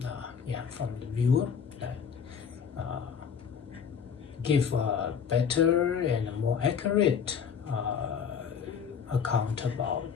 the viewer, that give a better and more accurate account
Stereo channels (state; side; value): quieter; right; 7.0 dB